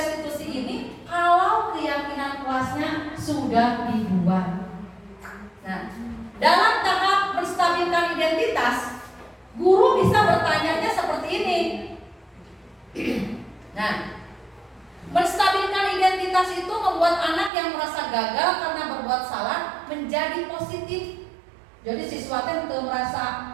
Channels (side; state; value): left; drops out; at 17.5 s